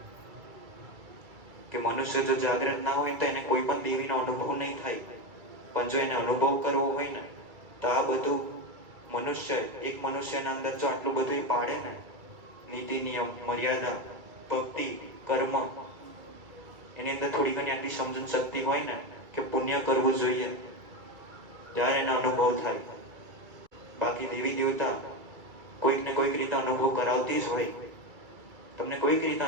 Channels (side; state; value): left; late; 2.3 ms